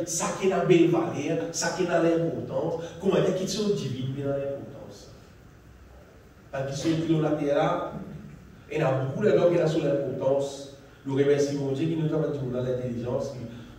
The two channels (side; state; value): both; identical; correlation 1.00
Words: ça qui est dans la belle valeur, ça qui est dans l'importance, comment dire, qui sont divines dans l'importance. Parce qu'ils sont l'eau la terre là, et il y a beaucoup de gens qui sont sur l'importance. Nous remercions mon Dieu qui nous a dit dans l'intelligence.